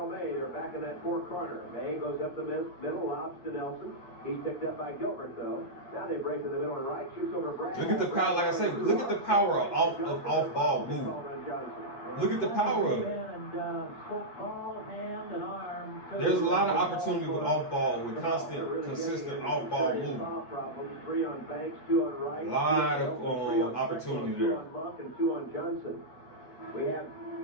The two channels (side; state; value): right; late; 8.3 ms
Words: May. They're back in that fourth corner. May goes up the middle, lobs to Nelson. He's picked up by Gilbert, though. Now they break to the middle and right, shoots over Brad. Look at the power, like I said, look at the power of off-ball move. Look at the power of it. There's a lot of opportunity with off-ball, with constant, consistent off-ball movement. 3 on Banks, 2 on Wright. A lot of opportunity there. 2 on Monk and 2 on Johnson. We have